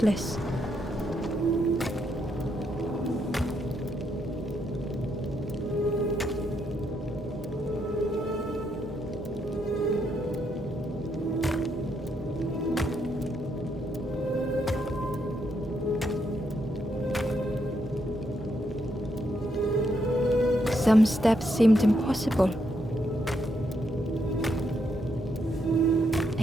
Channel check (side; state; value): both; normal; correlation 0.78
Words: Some steps seemed impossible.